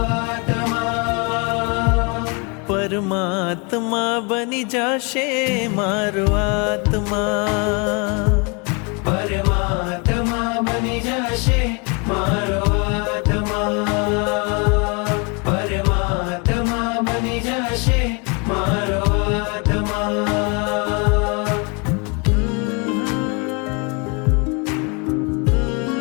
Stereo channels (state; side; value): quieter; right; 32.5 dB